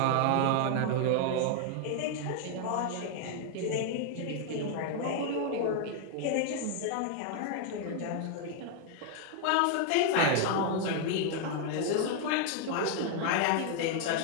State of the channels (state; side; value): different; both; correlation 0.00